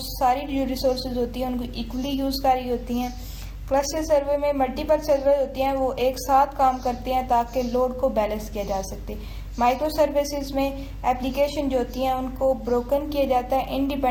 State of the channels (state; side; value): identical; both; correlation 1.00